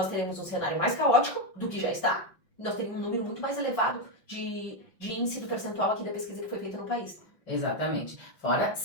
teremos um cenário mais caótico do que já está. Nós teríamos um número muito mais elevado de índice do percentual aqui da pesquisa que foi feita no país. Exatamente. Fora,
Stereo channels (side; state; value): right; late; 5.6 ms